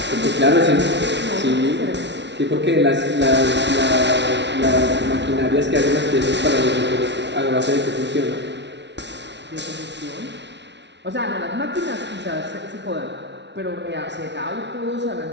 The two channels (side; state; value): left; late; 0.51 ms